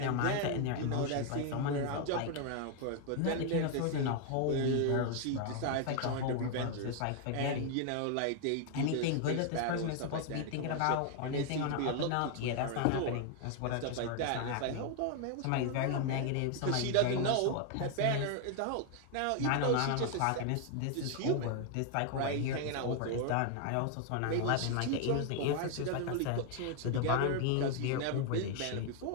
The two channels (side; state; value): both; different; correlation 0.00